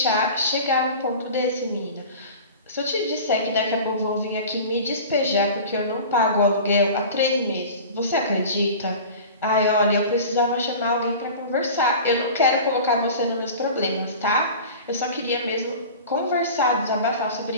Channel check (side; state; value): both; inverted; correlation -0.37